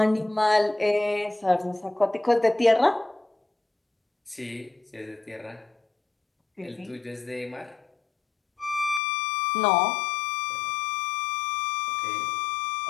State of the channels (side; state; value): right; drops out; at 9.0 s